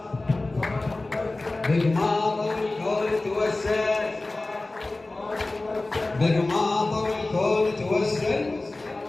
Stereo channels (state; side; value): quieter; right; 3.0 dB